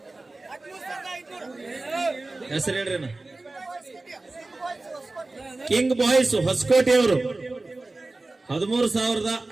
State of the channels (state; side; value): quieter; left; 3.1 dB